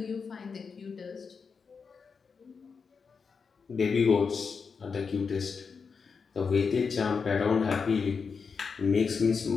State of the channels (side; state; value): right; quieter; 5.5 dB